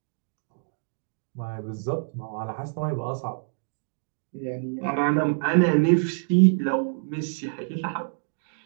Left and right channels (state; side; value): silent; left; digital silence